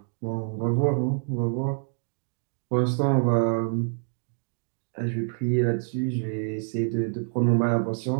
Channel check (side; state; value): left; silent; 60 dB below the other